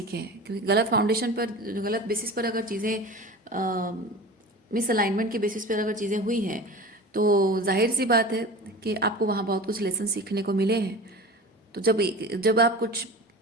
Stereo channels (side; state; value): both; normal; correlation 0.34